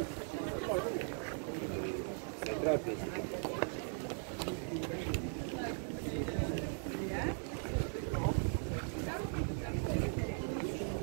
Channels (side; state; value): left; silent; 52 dB below the other